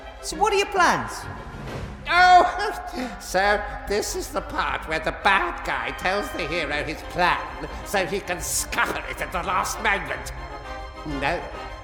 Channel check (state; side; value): identical; both; correlation 1.00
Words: So what are your plans? Oh, so this is the part where the bad guy tells the hero his plan so he can scupper it at the last moment. No,